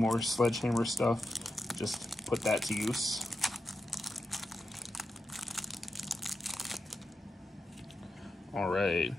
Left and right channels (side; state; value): both; normal; correlation 0.88